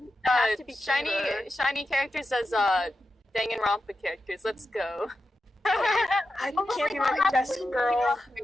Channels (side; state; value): both; normal; correlation 0.90